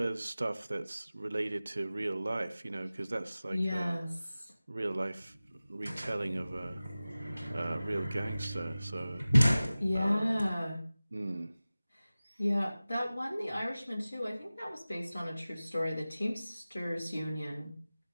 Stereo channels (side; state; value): both; inverted; correlation -0.97